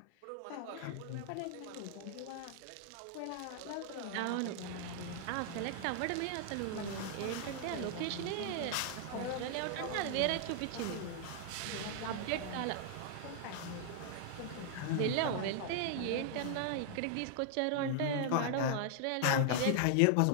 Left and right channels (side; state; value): both; different; correlation 0.00